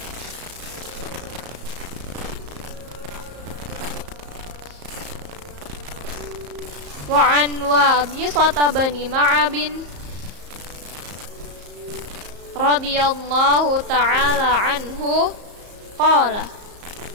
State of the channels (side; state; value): left; late; 34 ms